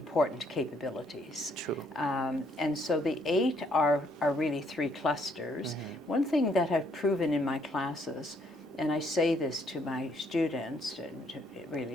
capabilities. True. And so the 8 are really 3 clusters. One thing that I've proven in my classes, and I say this to my students,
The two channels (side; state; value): both; normal; correlation 0.69